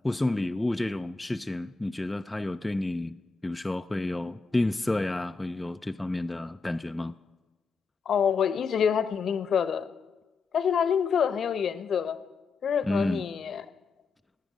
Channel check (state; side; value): quieter; right; 4.5 dB